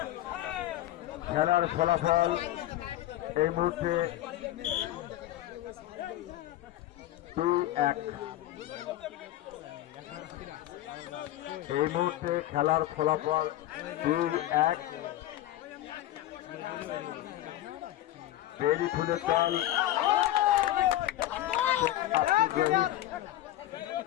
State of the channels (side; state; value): right; quieter; 14.3 dB